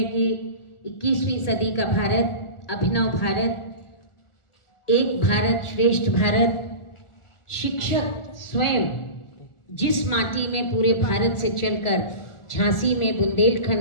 कि 21वीं सदी का भारत, अभिनव भारत, एक भारत श्रेष्ठ भारत, शिक्षक स्वयं जिस माटी में पूरे भारत से चलकर झांसी में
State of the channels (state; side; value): late; right; 1.4 ms